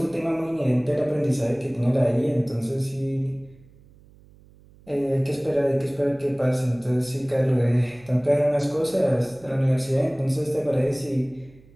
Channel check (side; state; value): right; noise; hum, 26 dB below the sound